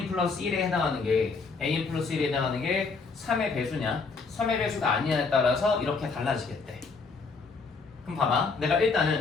플러스 1에 해당하는 게 AN 플러스 1에 해당하는 게 3의 배수냐 3의 배수가 아니냐에 따라서 이렇게 달라지겠대. 그럼 봐봐 내가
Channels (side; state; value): right; quieter; 4.5 dB